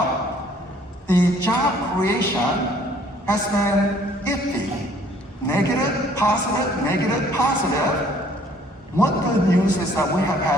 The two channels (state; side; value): normal; both; correlation 0.59